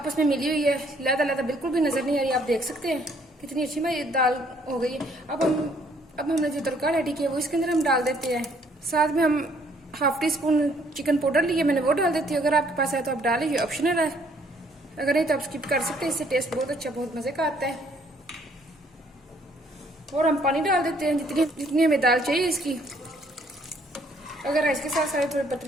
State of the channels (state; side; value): normal; both; correlation 0.64